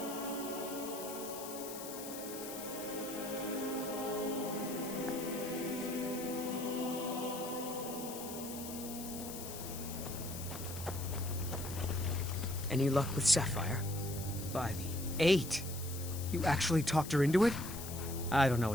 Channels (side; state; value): left; noise; hiss, 10 dB below the sound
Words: Any luck with Sapphire? By the 8. You actually talked her into it? I don't know